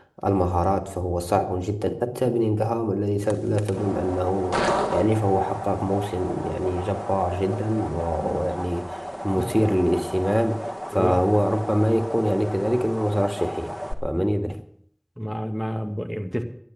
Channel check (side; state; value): both; identical; correlation 1.00